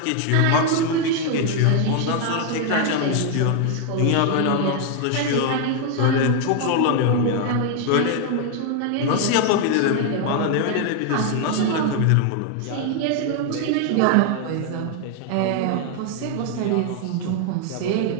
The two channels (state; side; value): different; both; correlation 0.00